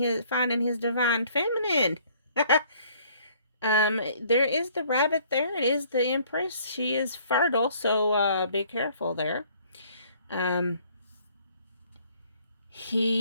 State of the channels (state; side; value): inverted; both; correlation -0.59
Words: his divine feminine. There is the rabbit there. It is the Empress. She is fertile, so, be careful there.